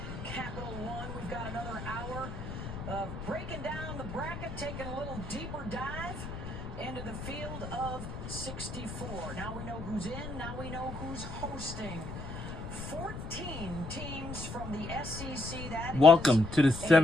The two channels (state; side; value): noise; left; rumble, 8 dB below the sound